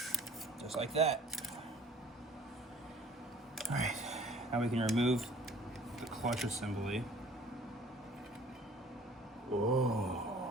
Just like that. All right, now we can remove the clutch assembly.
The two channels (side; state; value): both; normal; correlation 0.51